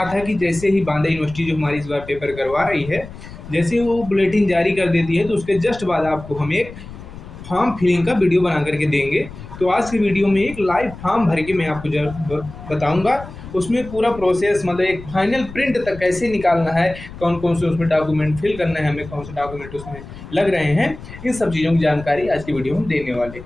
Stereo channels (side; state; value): left; noise; rumble, 14 dB below the sound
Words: था कि जैसे ही बांदा यूनिवर्सिटी जो हमारी इस बार पेपर करवा रही है, जैसे ही वो बुलेटिन जारी कर देती है तो उसके जस्ट बाद आपको हम एक फॉर्म फिलिंग का वीडियो बना करके देंगे। तो आज की वीडियो में एक लाइव फॉर्म भर के मैं आपको बताऊंगा, उसमें पूरा प्रोसेस मतलब एक फाइनल प्रिंट तक कैसे निकालना है, कौन कौन से उसमें डॉक्यूमेंट फिल करना है, हमें कौन से डॉक्यूमेंट उसमें लग रहे हैं, इन सब चीज़ों की जानकारी आज की वीडियो में देने वाले